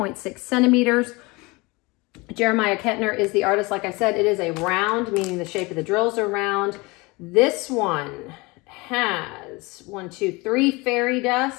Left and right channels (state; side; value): quieter; right; 24.8 dB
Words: centimeters. Jeremiah Kettner is the artist. Like I said, it is a round, meaning the shape of the drills are round. This one has 1, 2, 3 fairy